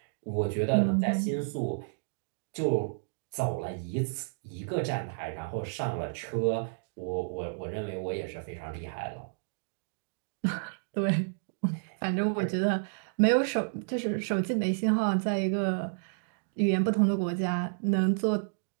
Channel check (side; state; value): left; silent; digital silence